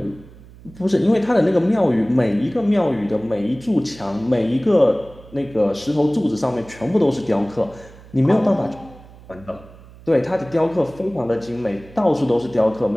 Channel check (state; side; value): noise; right; hum, 21 dB below the sound